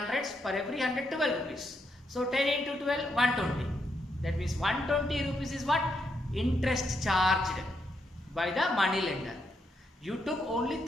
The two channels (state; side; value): normal; both; correlation 0.80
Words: Per every 100, 12 rupees. So 10 into 12, 120. That means 120 rupees is what? Interest charged by the money lender. You took only